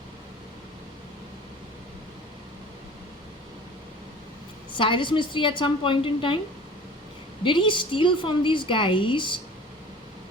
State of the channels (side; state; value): both; normal; correlation 0.43